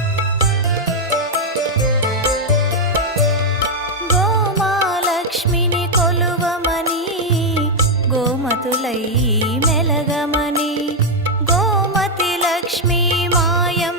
గోమాలక్ష్మిని కొలువమని గోమతులై మెలగమని గోమతి లక్ష్మీ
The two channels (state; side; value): normal; both; correlation 0.00